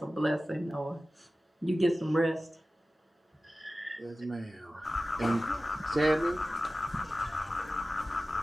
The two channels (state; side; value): normal; both; correlation 0.95